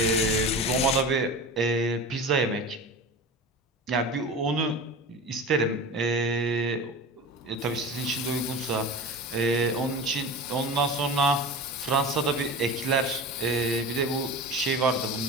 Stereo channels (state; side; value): normal; both; correlation 0.32